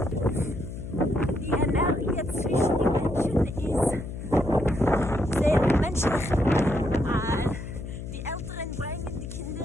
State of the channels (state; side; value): noise; left; hum, 8 dB below the sound